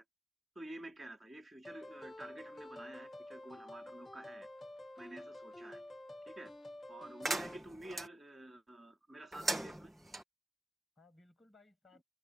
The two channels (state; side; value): normal; both; correlation 0.92